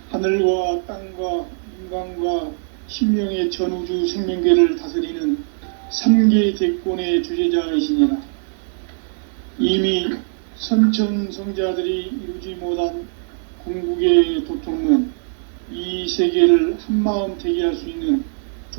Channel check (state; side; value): silent; left; 57 dB below the other